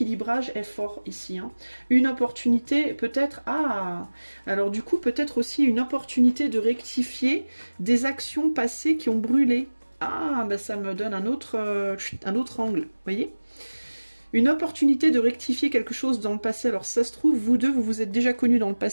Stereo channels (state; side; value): inverted; both; correlation -1.00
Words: est fort ici. Hein. Une opportunité, peut-être... Ah! Alors, du coup, peut-être aussi une opportunité de rectifier des actions passées qui ont brûlé. Ah, ben ça me donne un autre angle, vous voyez ? Une opportunité de rectifier quelque chose dans le passé. Alors ça se trouve, vous deux, vous vous êtes déjà connus dans le